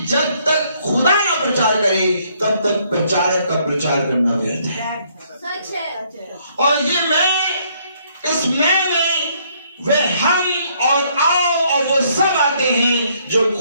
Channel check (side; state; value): both; inverted; correlation -0.68